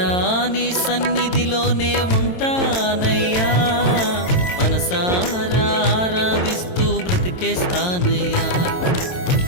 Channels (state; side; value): late; right; 22 ms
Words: నీ సన్నిధిలోనే ఉంటానయ్యా, మనసారా ఆరాధిస్తూ బ్రతికేస్తానయ్యా.